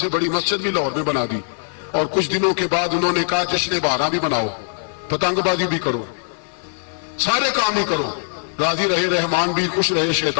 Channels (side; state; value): right; silent; digital silence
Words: بڑی مسجد بھی لاہور میں بنا دی، اور کچھ دنوں کے بعد انہوں نے کہا جشن بہارا بھی بناؤ، پتنگ بازی بھی کرو، سارے کام ہی کرو، راضی رہے رحمان بھی، خوش رہے